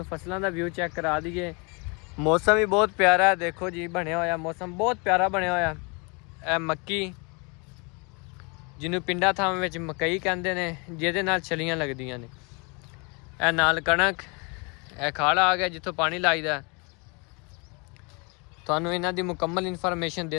फसलों का व्यू चेक करा दीए। मौसम भी बहुत प्यारा है, देखो जी बनया होया मौसम बहुत प्यारा बनया होया। ए मक्की जिन्हों पिंडा थावां विच मकई कहंदे ने, जिहदे नाल छलियां लगदियां ने। ए नाल कणक, ए खाड़ा आ गया जिथों पानी लाईदा। तुहानू इन्हां दी मुकम्मल इन्फॉर्मेशन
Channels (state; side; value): quieter; right; 31.3 dB